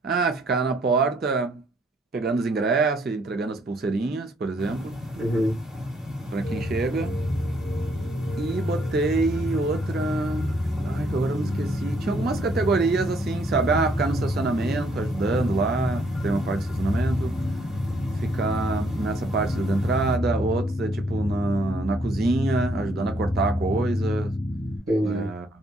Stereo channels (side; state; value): both; normal; correlation 0.69